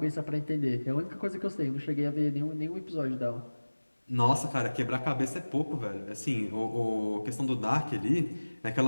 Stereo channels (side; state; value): both; inverted; correlation -1.00